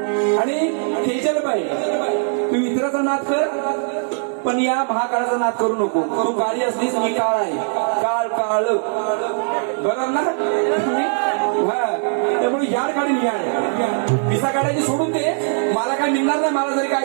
आणि तेजल बाई तू इतराचा नाद कर पण या महाकाळाचा नाद करू नको तू काळी असलीस मी काळ आहे काळ काळ बरोबर ना हा त्यामुळे याड काढीन याड मिसा काढायची सोडून दे. मला काय मिळणार नाही. मला जरी काय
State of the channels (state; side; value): silent; left; 66 dB below the other